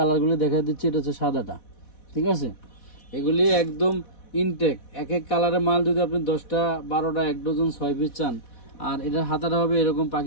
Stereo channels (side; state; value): right; late; 4.1 ms